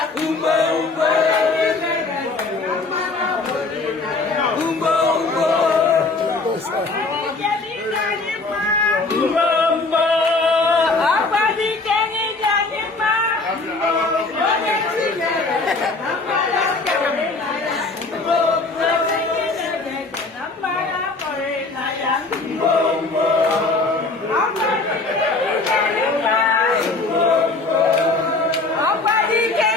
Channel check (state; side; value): quieter; right; 3.5 dB